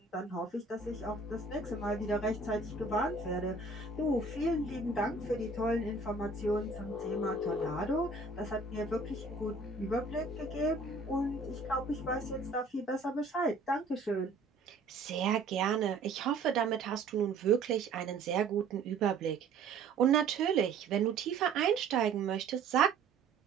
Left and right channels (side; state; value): left; quieter; 3.9 dB